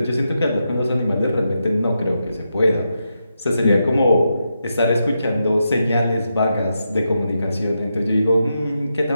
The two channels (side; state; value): both; inverted; correlation -0.85